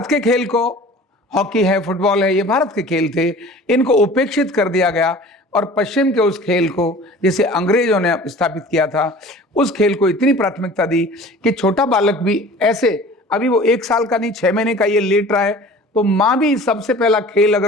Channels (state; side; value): normal; both; correlation 0.43